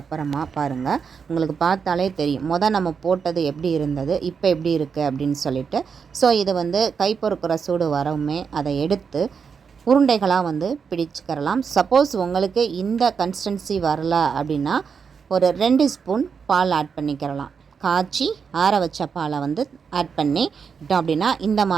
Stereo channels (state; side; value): quieter; left; 6.1 dB